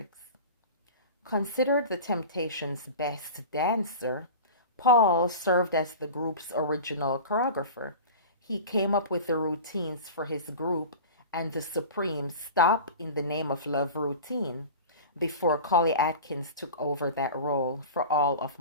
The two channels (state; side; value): inverted; both; correlation -0.34